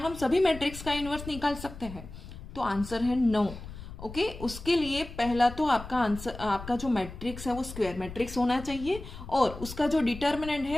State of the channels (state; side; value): noise; left; rumble, 13 dB below the sound